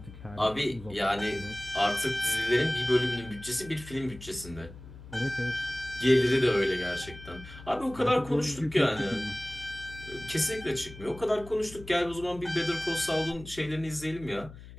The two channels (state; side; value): noise; left; hum, 16 dB below the sound